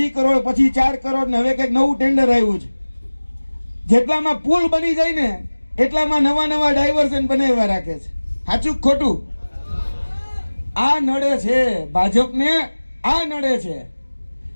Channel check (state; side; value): inverted; both; correlation -1.00